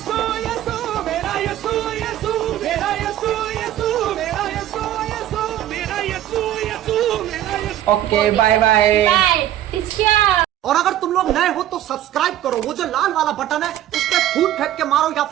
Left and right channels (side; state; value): left; quieter; 12.5 dB